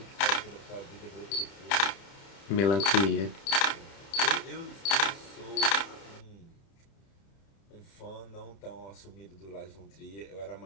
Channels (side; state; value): right; late; 30 ms